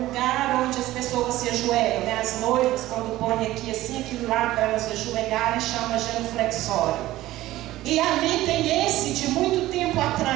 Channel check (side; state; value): left; quieter; 16.0 dB